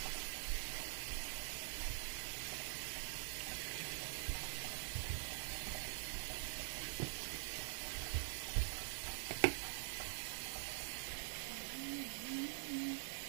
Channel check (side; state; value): left; silent; digital silence